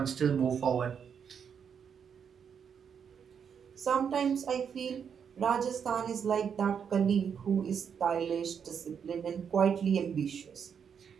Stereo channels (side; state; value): left; quieter; 7.3 dB